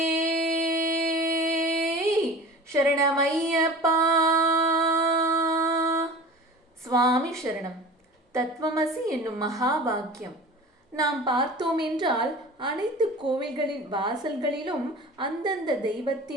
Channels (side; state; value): both; normal; correlation 0.39